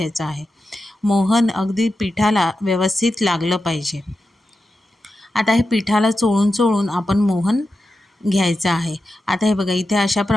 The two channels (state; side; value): normal; both; correlation 0.91